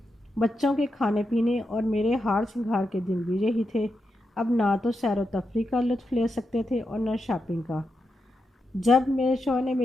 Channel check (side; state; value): both; normal; correlation 0.86